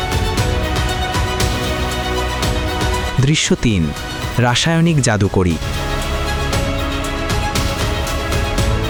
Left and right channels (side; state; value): both; identical; correlation 1.00